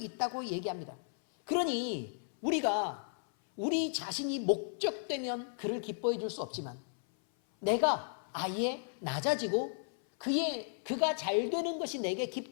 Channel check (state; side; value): silent; right; 55 dB below the other